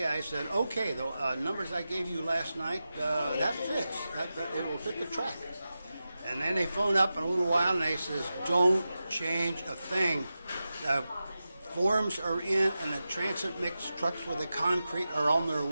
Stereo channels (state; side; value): inverted; both; correlation -0.93